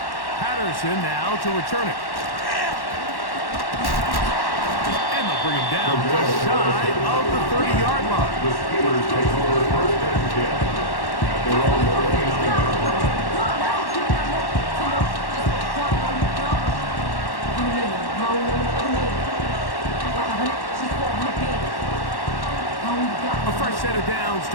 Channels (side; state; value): right; late; 1.1 ms